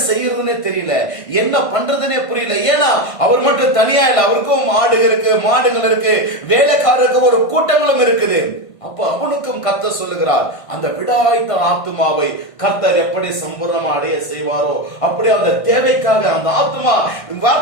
செய்யறதுன்னே தெரியல, என்ன பண்றதுன்னே புரியல. ஏன்னா அவர் மட்டும் தனியா இல்ல, அவருக்கும் ஆடுகள் இருக்கு, மாடுகள் இருக்கு, வேலைக்காரருக்கு ஒரு கூட்டங்களும் இருக்குது. அப்ப அவனுக்கும் கர்த்தர் சொல்லுகிறார், அந்த விடாய்த்த ஆத்துமாவை கர்த்தர் எப்படி சம்பூர்ணமா அடைய செய்வாரோ அப்படி அந்த தேவைக்காக அந்த ஆத்துமா,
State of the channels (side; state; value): right; late; 1.5 ms